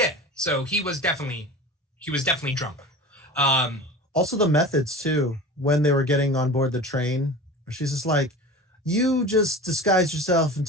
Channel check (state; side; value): normal; both; correlation 0.34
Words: so he was definitely drunk. Also the methods too, when they were getting on board the train, she's just like, you just disguised yourself and